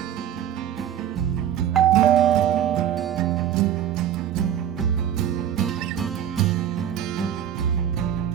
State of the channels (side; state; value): left; quieter; 10.3 dB